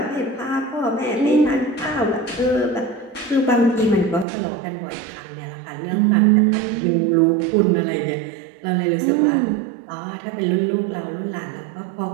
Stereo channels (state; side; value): drops out; left; at 4.2 s